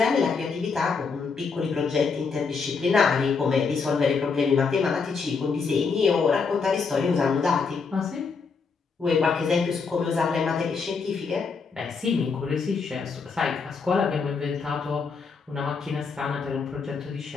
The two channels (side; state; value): right; quieter; 5.1 dB